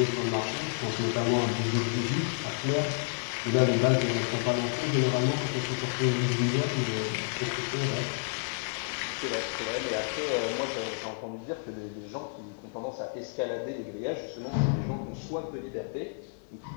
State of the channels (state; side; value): silent; right; digital silence